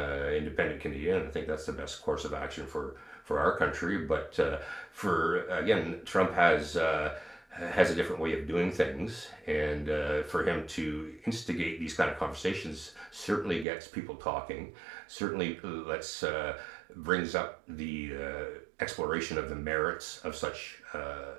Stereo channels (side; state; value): left; drops out; at 13.7 s